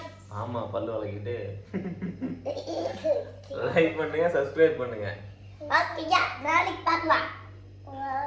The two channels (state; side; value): identical; both; correlation 1.00